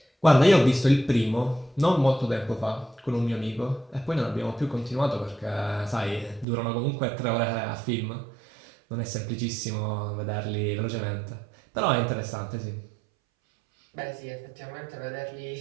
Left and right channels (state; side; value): drops out; left; at 6.5 s